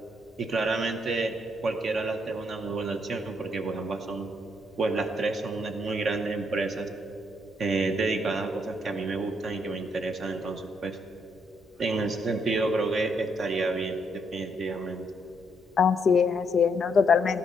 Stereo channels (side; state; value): both; normal; correlation 0.74